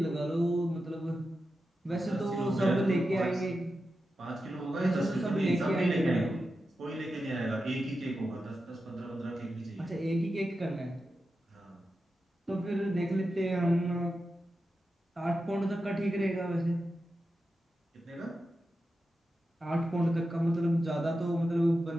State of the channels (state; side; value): normal; both; correlation 0.90